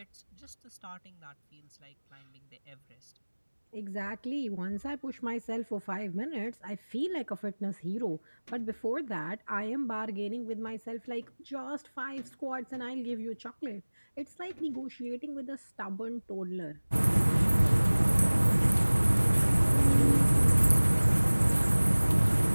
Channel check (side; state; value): both; inverted; correlation -1.00